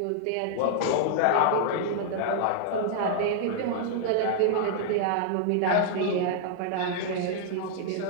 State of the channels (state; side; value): different; both; correlation -0.01